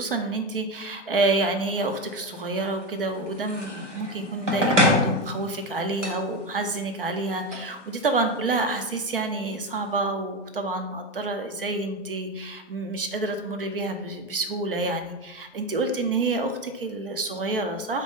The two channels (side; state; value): both; normal; correlation 0.16